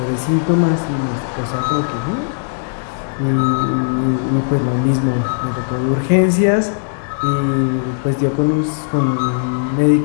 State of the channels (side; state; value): right; silent; digital silence